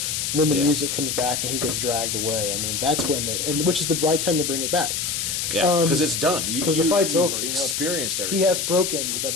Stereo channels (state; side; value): noise; left; hiss, 1 dB below the sound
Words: and then the Yeah. music comes back and he gets dragged away. I mean, that's when which is the right time to bring it back. Yeah, because it's done. Because the fight's you've over. Experienced everything. He has broken the